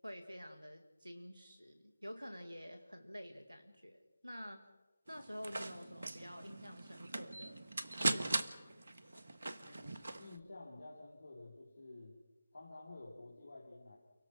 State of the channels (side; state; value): both; inverted; correlation -0.94